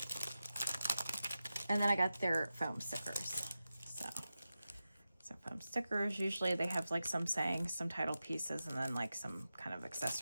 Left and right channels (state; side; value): inverted; both; correlation -0.92